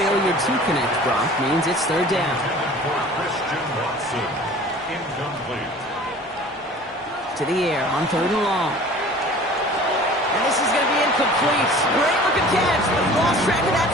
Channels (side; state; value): both; normal; correlation 0.45